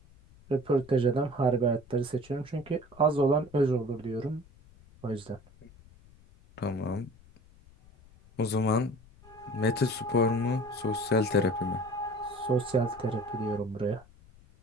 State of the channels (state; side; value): noise; left; rumble, 25 dB below the sound